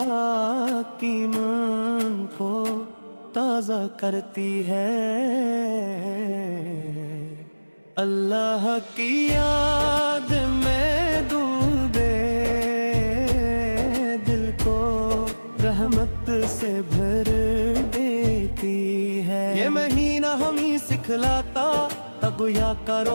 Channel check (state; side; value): inverted; both; correlation -1.00